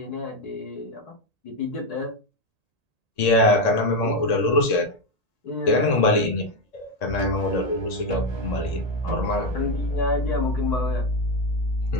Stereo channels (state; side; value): late; right; 1.8 ms